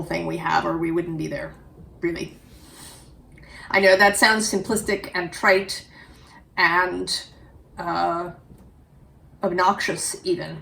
thing we have, or we wouldn't be there, really. I know that sounds simplistic and trite and obnoxious even.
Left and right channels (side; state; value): both; identical; correlation 1.00